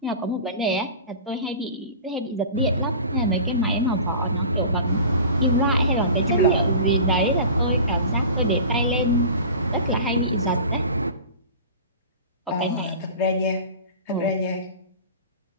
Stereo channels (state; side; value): inverted; both; correlation -0.37